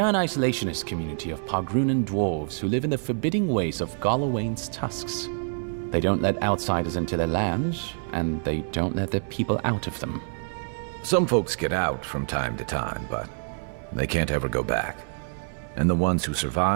an isolationist community of Pagrunan dwarves who live in the forbidding ways of Galawain's tusks. They don't let outsiders into their lands, and they don't let their people out of them. Some folks get out from time to time, but they can't ever go back. And the ones who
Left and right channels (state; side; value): silent; left; 60 dB below the other